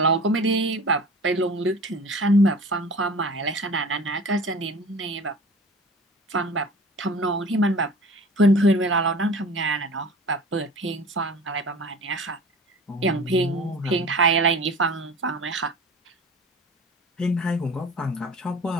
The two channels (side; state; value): both; normal; correlation 0.40